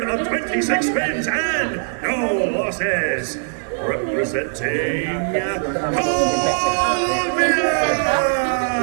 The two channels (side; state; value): left; silent; digital silence